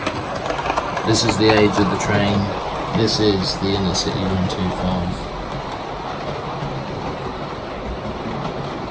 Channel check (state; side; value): identical; both; correlation 1.00